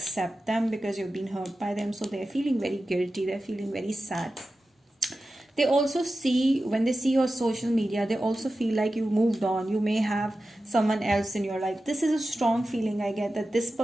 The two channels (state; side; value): normal; both; correlation 0.93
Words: them because you've been hurt by them. So they're feeling very guilty, they're feeling very sad. They also see, when they see your social media, they also feel like you moved on. You may have someone else in your life. This is a strong feeling I get, that this